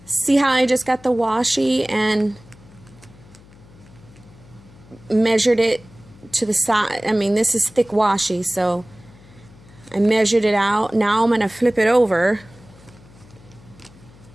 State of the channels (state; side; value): noise; left; hum, 24 dB below the sound